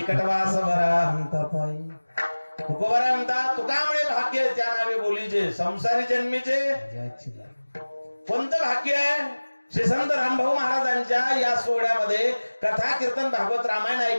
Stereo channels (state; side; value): inverted; both; correlation -1.00